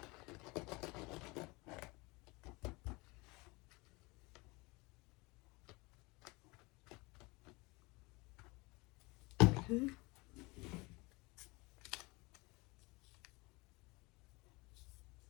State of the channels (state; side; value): quieter; right; 25.1 dB